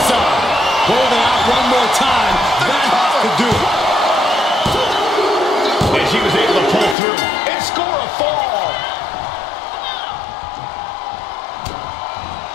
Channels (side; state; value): right; drops out; at 7.0 s